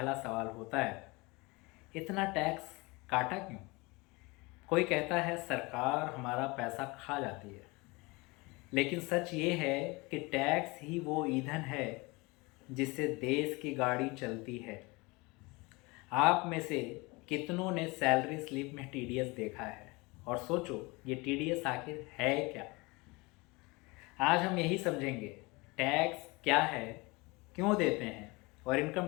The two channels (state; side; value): quieter; right; 25.1 dB